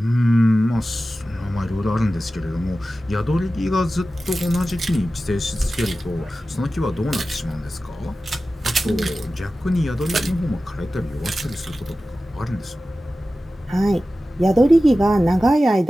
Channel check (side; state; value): both; normal; correlation 0.95